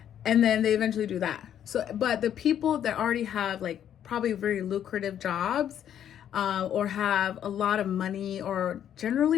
And then they eventually do that. So, but the people that already have like probably very lucrative jobs, or have a lot of money, or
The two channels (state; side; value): quieter; right; 9.9 dB